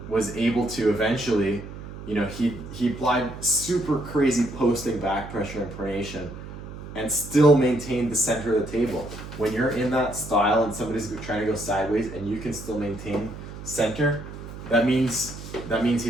was able to eventually, he applied super crazy posting back pressure and pronation and still maintain the center of the table. When you're in that style and somebody's trying to go sideways and you can still maintain center, that means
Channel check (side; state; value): right; noise; hum, 12 dB below the sound